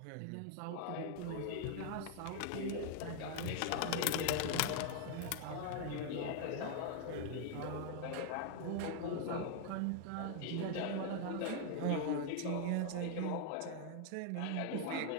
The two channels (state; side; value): different; both; correlation 0.00